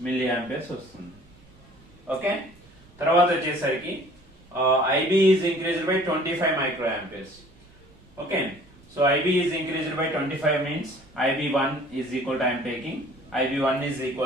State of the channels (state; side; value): noise; right; rumble, 27 dB below the sound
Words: milliamperes వస్తుంది. Okay, తర్వాత వచ్చేసరికి IB is increased by 25 microamperes. Okay, so IB is increased by 25 means IB1 is equal to, I am taking IB1 is